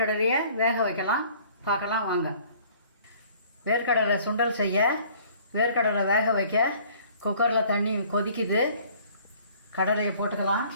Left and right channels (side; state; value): both; inverted; correlation -0.54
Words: வேக வைக்கலாம், பார்க்கலாம் வாங்க. வேர்க்கடலை சுண்டல் செய்ய வேர்க்கடலை வேக வைக்க குக்கரில் தண்ணி கொதிக்குது. கடலையை போட்டுக்கலாம்.